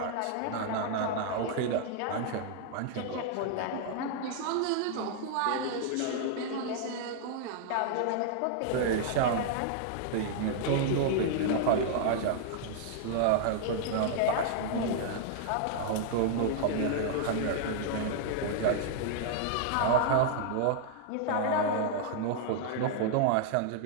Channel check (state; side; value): different; both; correlation -0.01